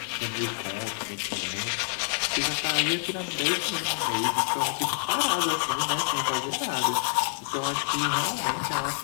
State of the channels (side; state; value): right; silent; digital silence